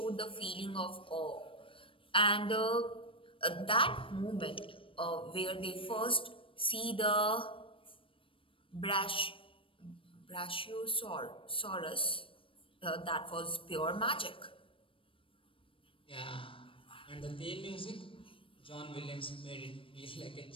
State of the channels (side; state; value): right; late; 0.25 ms